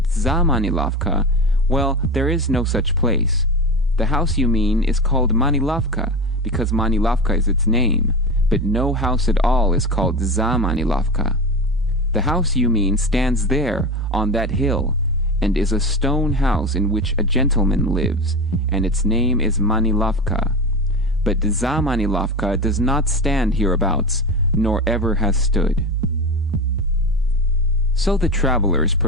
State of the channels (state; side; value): normal; both; correlation 0.24